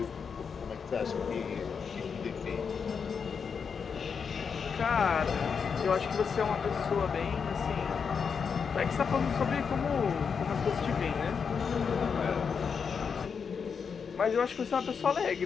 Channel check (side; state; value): right; quieter; 6.2 dB